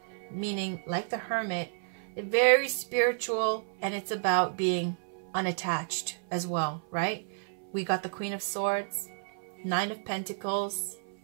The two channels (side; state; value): left; silent; 57 dB below the other